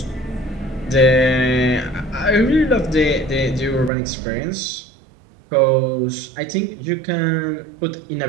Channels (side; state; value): left; drops out; at 3.9 s